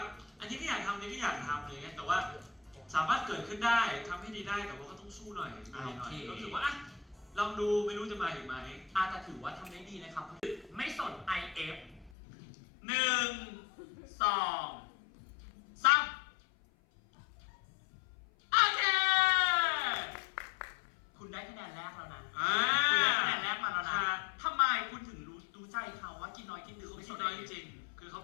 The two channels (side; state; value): right; drops out; at 12.1 s